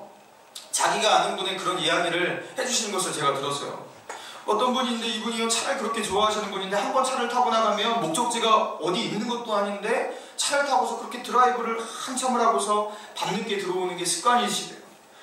자기가 아는 분의 그런 이야기를 해주시는 것을 제가 들었어요. 어떤 분인데 이분이 차를 그렇게 좋아하시는 분인데 한번 차를 타고 나가면 목적지가 어디 있는 것도 아닌데 차를 타고서 그렇게 드라이브를 한참을 하고서 밤늦게 들어오는 게 습관이시대요.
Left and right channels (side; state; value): both; identical; correlation 1.00